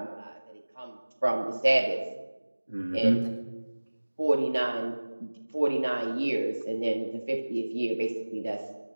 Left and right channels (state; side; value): inverted; both; correlation -1.00